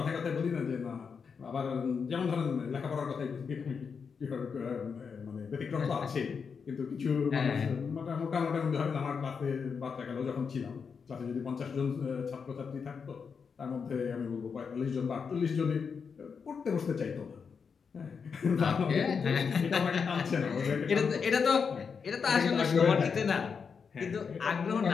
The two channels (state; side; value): quieter; right; 6.0 dB